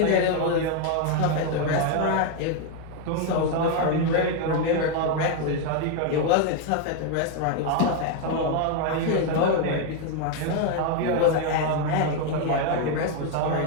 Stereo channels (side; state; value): both; different; correlation 0.01